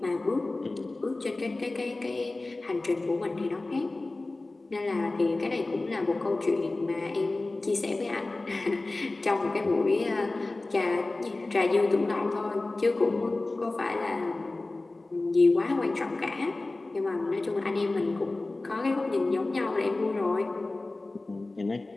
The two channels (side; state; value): right; quieter; 3.1 dB